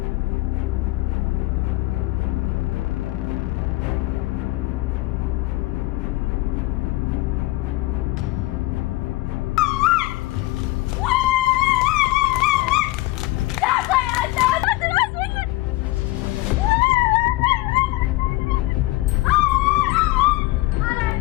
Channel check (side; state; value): right; quieter; 19.2 dB